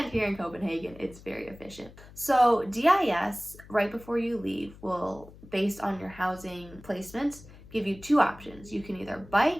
here in Copenhagen, it's very efficient. So DIS, right before you leave, will, based on your housing placement, give you two options. You can either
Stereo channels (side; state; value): left; noise; hum, 20 dB below the sound